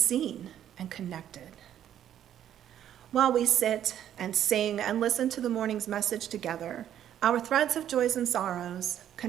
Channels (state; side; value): quieter; left; 10.6 dB